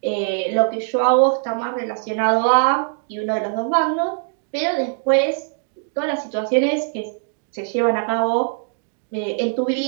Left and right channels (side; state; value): left; silent; digital silence